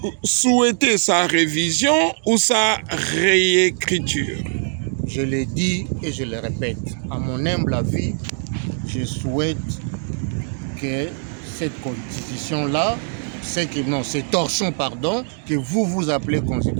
souhaitez sa révision ou sa réécriture? Je l'ai dit et je le répète. À mon humble avis, je souhaite que cette constitution-là, ces torchons, que vous appelez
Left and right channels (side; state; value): left; silent; 55 dB below the other